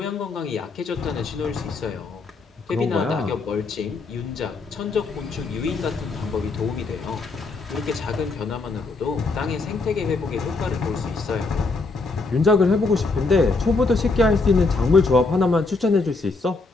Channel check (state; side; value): quieter; right; 3.8 dB